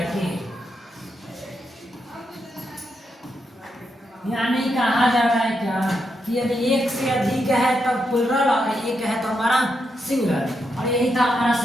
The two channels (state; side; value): normal; both; correlation 0.83